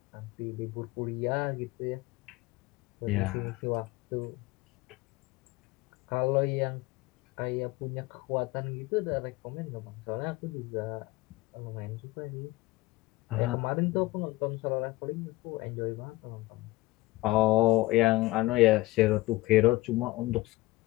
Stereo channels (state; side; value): quieter; right; 20.0 dB